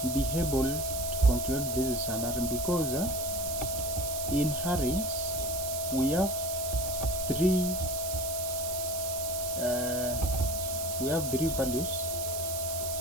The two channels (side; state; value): right; noise; hiss, 5 dB below the sound